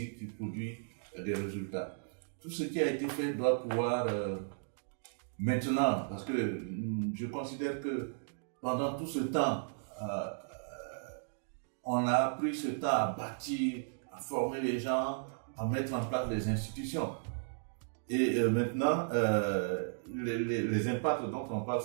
qui produit des résultats. Tout ce qui a été fait doit pouvoir maintenant, parce que je considère que pendant tout ce temps, on a pris ce temps à bâtir, à former les gens, à mettre en place les institutions. Et maintenant, les impacts dont on parle,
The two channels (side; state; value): left; silent; digital silence